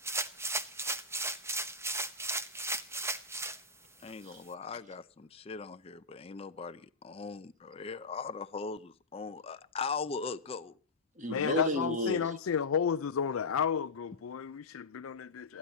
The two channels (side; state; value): right; quieter; 3.5 dB